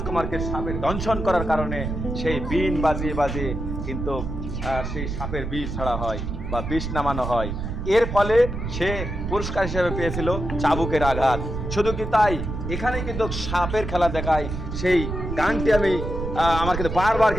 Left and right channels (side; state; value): right; noise; rumble, 5 dB below the sound